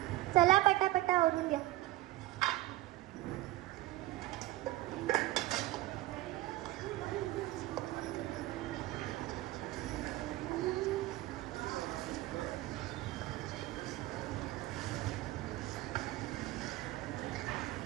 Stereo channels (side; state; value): left; quieter; 17.4 dB